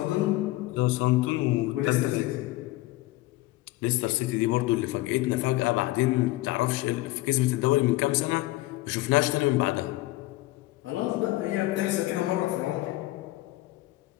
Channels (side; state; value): right; quieter; 18.5 dB